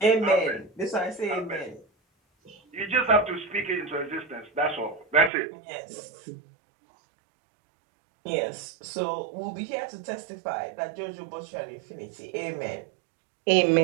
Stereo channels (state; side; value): drops out; left; at 5.3 s